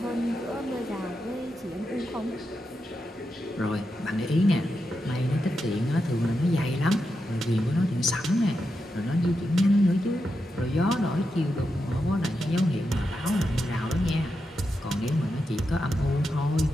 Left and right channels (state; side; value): normal; both; correlation 0.87